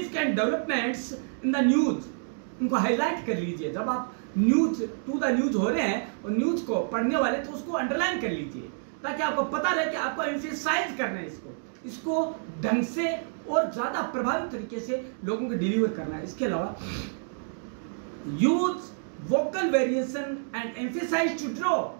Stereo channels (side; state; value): left; silent; digital silence